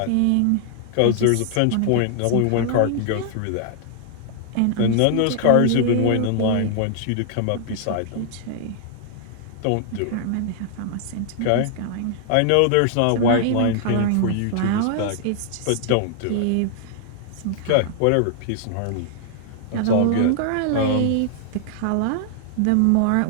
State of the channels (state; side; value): different; both; correlation 0.00